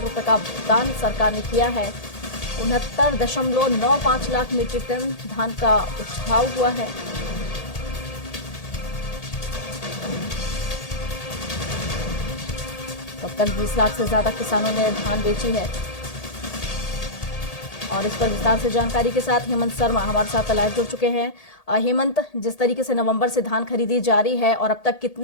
रुपए का भुगतान सरकार ने किया है। 69.95 लाख मीट्रिक टन धान का उठाव हुआ है। तब तक 20 लाख से ज्यादा किसानों ने धान बेची है। और इस पर विस्तार से जानकारी के साथ हेमंत शर्मा हमारे साथ लाइव जुड़ चुके हैं। हेमंत, जिस तरीके से नवंबर से धान खरीदी जारी है और अब तक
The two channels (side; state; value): right; late; 1.8 ms